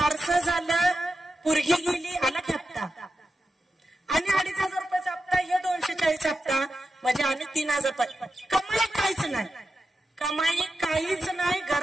झालं, पोरगी गेली, आला हप्ता आणि 2,500 रुपयाचा हप्ता, हे 240 हप्ता म्हणजे आणि 3,000 रुपये. कमाई काहीच नाही, कमाई काहीच नाही.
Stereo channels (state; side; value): normal; both; correlation 0.90